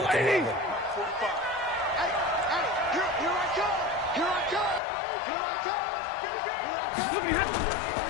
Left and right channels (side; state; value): right; drops out; at 4.8 s